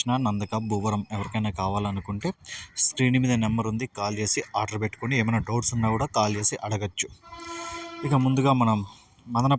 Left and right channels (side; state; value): both; identical; correlation 1.00